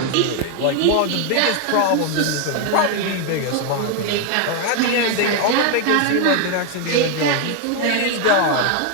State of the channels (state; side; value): different; both; correlation 0.01